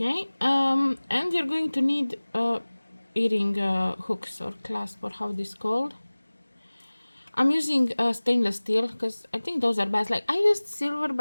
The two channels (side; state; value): both; inverted; correlation -1.00